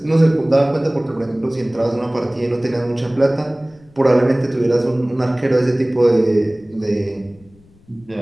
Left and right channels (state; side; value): noise; left; rumble, 29 dB below the sound